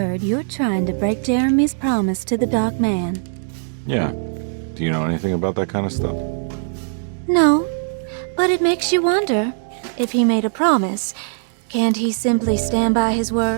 you're trying to break Jeremy's promise to the Dark Man. Yeah. Do you know anything about that kind of stuff? No, but it makes you wonder. If he made a promise, can't he simply stand by his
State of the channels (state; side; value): silent; left; digital silence